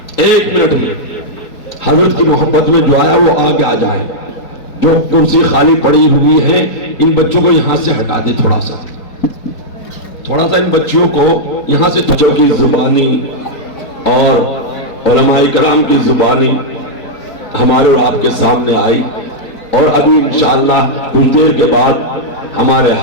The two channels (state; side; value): late; right; 3.9 ms